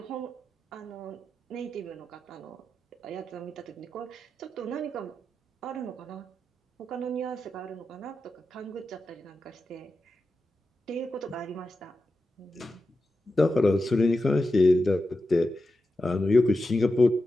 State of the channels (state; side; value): normal; both; correlation 0.90